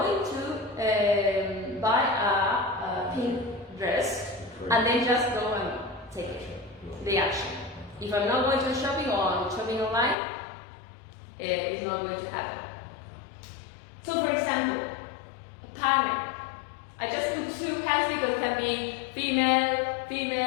to buy a pink dress and then just go and take the action. If I'm not going to shopping or I'm shopping online, it's not going to happen. So for example, a partner. I just put 2 hands because it can be female,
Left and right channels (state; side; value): drops out; right; at 10.2 s